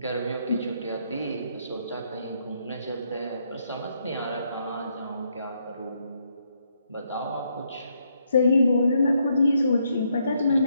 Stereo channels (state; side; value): inverted; both; correlation -0.75